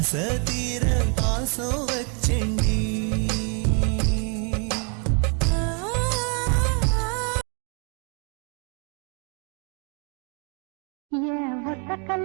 தீர பாசம் வச்சேண்டி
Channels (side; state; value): left; quieter; 38.2 dB